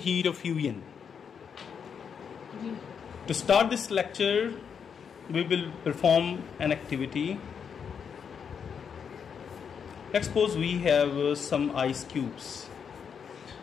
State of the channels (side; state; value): right; quieter; 7.0 dB